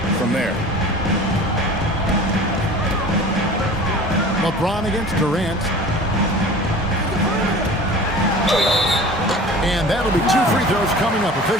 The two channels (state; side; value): normal; both; correlation 0.41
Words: from there. LeBron against Durant. And that'll be 2 free throws coming up.